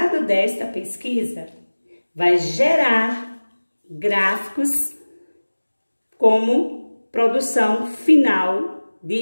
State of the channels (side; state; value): both; inverted; correlation -1.00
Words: desta pesquisa vai gerar gráficos como produção final